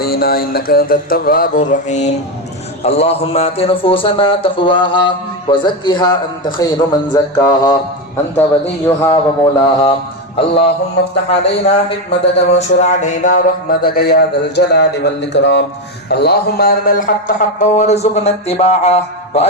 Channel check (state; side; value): normal; both; correlation 0.11